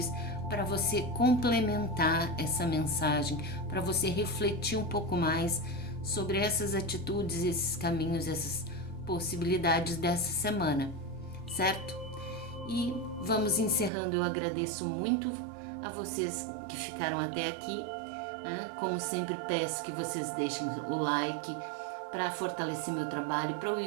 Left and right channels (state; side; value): drops out; left; at 13.9 s